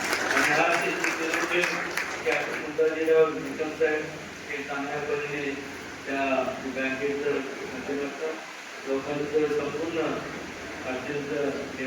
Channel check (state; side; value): identical; both; correlation 1.00